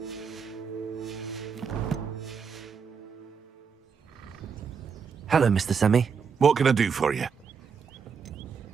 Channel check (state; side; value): quieter; left; 6.1 dB